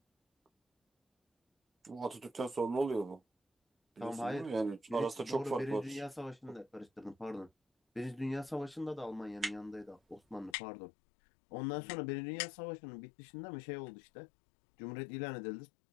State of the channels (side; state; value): right; drops out; at 10.6 s